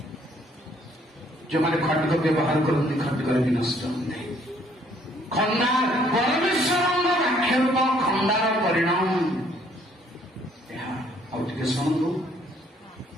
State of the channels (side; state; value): both; normal; correlation 0.64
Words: ଯେଉଁମାନେ ଖଣ୍ଡକ ବ୍ୟବହାର କରନ୍ତି ଖଣ୍ଡକରେ ବି ନଷ୍ଟ ହୁଏ। ଖଣ୍ଡା ପରମେଶ୍ୱରଙ୍କ ବାକ୍ୟ ରୂପ ଖଣ୍ଡାର ପରିଣାମ ଏହା। ଆଉ ଟିକେ ଶୁଣନ୍ତୁ,